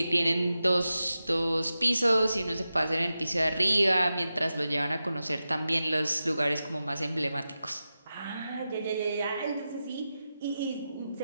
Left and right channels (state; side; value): inverted; both; correlation -0.92